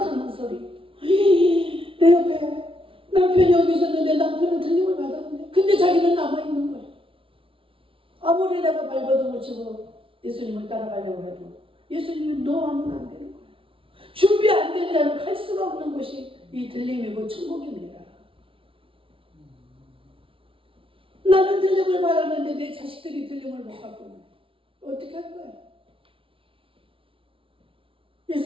소리. 내 옆에 남편이 여기 있었는데 남편은 들림을 받았는데 근데 자기는 남아있는 거예요. 아무리 내가 발버둥을 치고 예수님을 따라가려고 해도 예수님이 너 하면 안 되는 거예요. 준비 안 된 자는 갈 수가 없는 곳이 이 들림이고 천국입니다. 나는 들림을 받았는데 내 자식들이 들림을 못 받고 어떻게 할 거야?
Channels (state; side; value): late; left; 0.26 ms